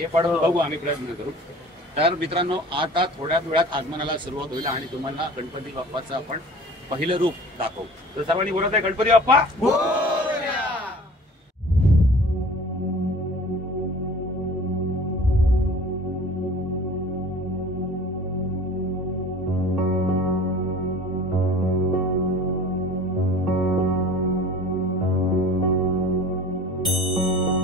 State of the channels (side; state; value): both; normal; correlation 0.44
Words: पण बघू आम्ही प्रयत्न करू. तर मित्रांनो, आता थोड्या वेळात आगमनाला सुरुवात होईल आणि तुम्हाला गणपती बाप्पाचं आपण पहिलं रूप दाखवू. तर सर्वांनी बोलत आहे गणपती बाप्पा.